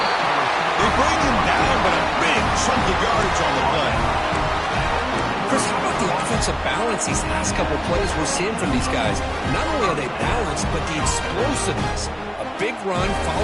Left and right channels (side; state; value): both; identical; correlation 1.00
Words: They bring him down, but a big chunk of yardage on the play. Chris, how about the offensive balance these last couple plays we're seeing from these guys? Not only are they balanced, but the explosiveness. A big run